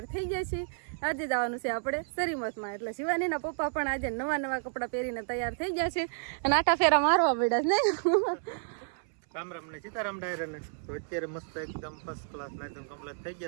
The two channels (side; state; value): left; silent; 57 dB below the other